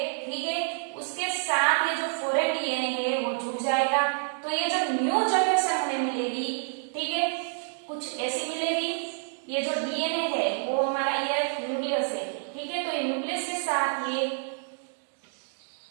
ठीक है, उसके साथ ये जो फॉरेन डीएनए है वो जुड़ जाएगा, तो ये जो न्यू जनरेशन हमें मिलेगी, ठीक है, कुछ ऐसी मिलेगी। ये जो डीएनए है वो हमारा ये न्यूक्लियस है, ठीक है, तो ये न्यूक्लियस के साथ ये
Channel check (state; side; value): silent; left; digital silence